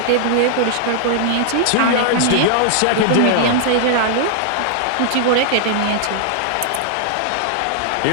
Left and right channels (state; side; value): different; both; correlation -0.01